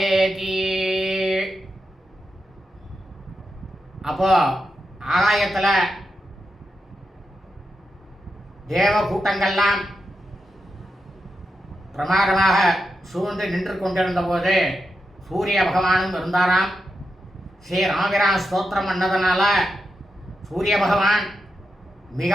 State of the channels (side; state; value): both; normal; correlation 0.87